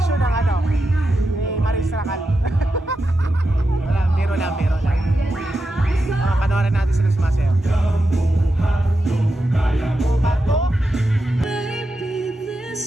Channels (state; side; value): normal; both; correlation 0.88